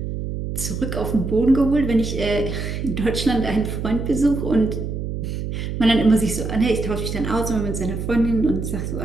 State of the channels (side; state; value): right; noise; hum, 4 dB below the sound